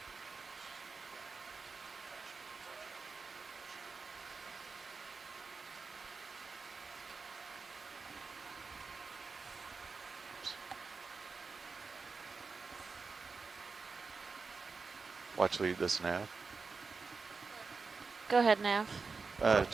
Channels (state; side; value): quieter; left; 4.6 dB